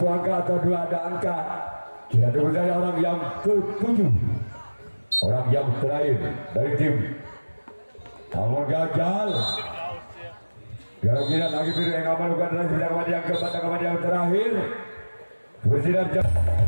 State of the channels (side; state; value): both; inverted; correlation -1.00